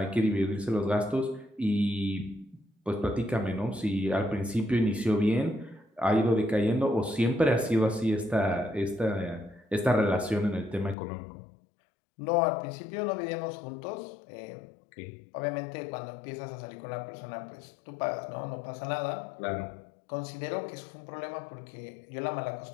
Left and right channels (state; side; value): drops out; right; at 11.0 s